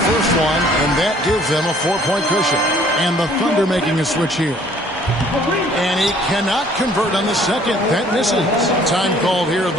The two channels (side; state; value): both; normal; correlation 0.57